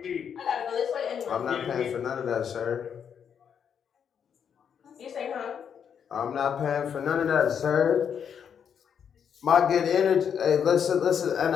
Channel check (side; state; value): right; quieter; 7.7 dB